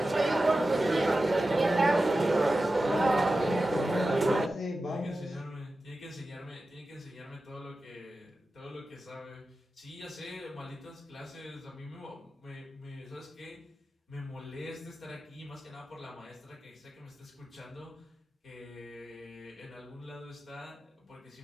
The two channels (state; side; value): normal; both; correlation 0.93